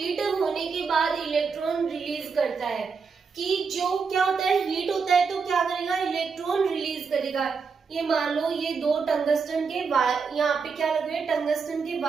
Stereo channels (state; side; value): quieter; left; 5.4 dB